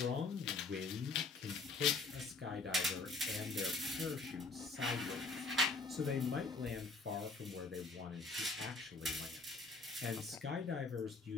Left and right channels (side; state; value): right; quieter; 3.8 dB